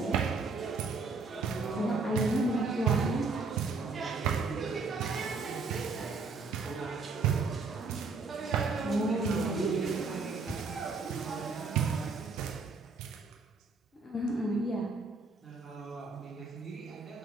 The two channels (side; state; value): left; quieter; 4.1 dB